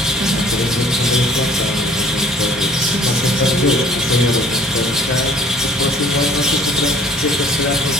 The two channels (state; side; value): normal; both; correlation 0.53